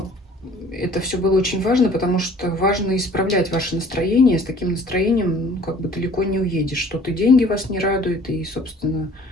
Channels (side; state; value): both; normal; correlation 0.52